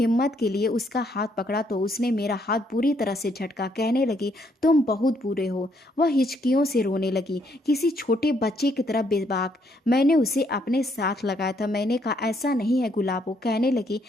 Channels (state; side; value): normal; both; correlation 0.71